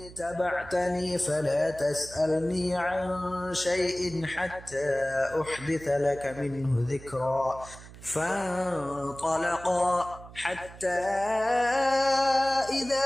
اتبعتني فلا تسألني عن شيء حتى أحدث لك منه ذكرا فانطلقا حتى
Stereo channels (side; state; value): right; noise; hum, 17 dB below the sound